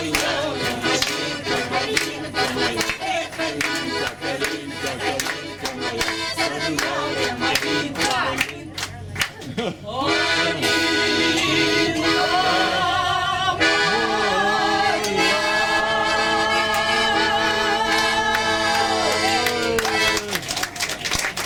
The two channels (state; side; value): identical; both; correlation 1.00